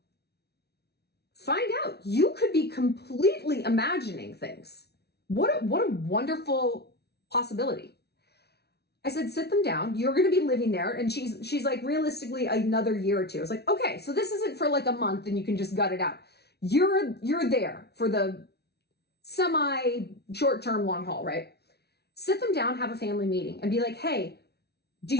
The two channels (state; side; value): late; right; 0.48 ms